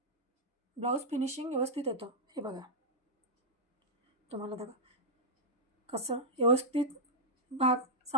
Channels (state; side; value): normal; both; correlation -0.08